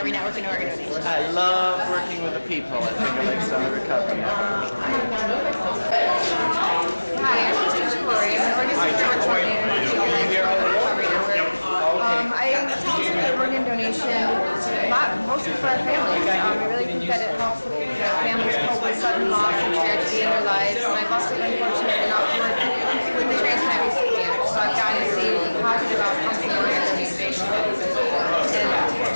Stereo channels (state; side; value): inverted; both; correlation -1.00